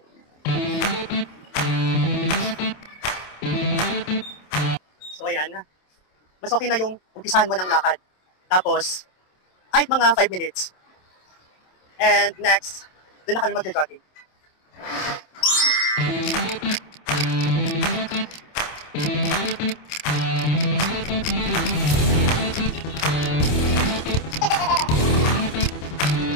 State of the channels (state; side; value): late; right; 27 ms